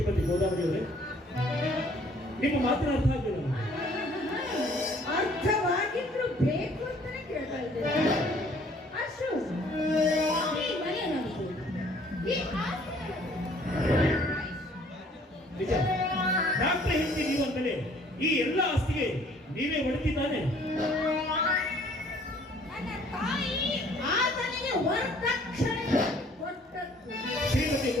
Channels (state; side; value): normal; both; correlation 0.58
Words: ಗೋದಾವರಿ ಅವರೇ, ನಿಮ್ಮ ಮಾತಿನ ಅರ್ಥ ಆಗಲಿಲ್ಲ. ಅರ್ಥವಾಗಿದ್ರು ಬೇಕು ಅಂತಾನೆ ಕೇಳ್ತಾ ಇದ್ದೇನೆ. ಅಶೋಕ್, ಈ ಮನೆ ನಮ್ದು, ಈ ಆಸ್ತಿ ನಿಜ, ಡಾಕ್ಟರ್ ಹೆಂಡತಿ ನೀವು ಅಂತಲೇ ಈ ಎಲ್ಲ ಆಸ್ತಿಗೆ ನೀವೇ ಹೊಡೆದಿದ್ದಾನೆ. ನನ್ನ ತಾಯಿ ಆತನಿಗೆ ವರದಕ್ಷಿಣೆ ಕೊಟ್ಟದ್ದು. ಶ್ರೀಮತಿ